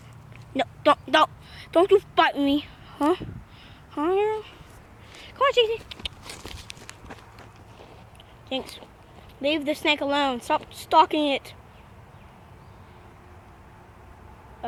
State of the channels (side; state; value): both; identical; correlation 1.00